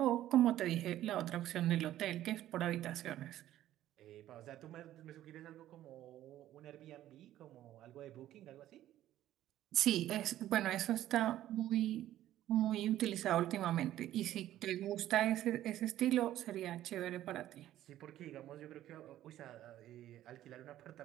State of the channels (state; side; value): quieter; left; 13.2 dB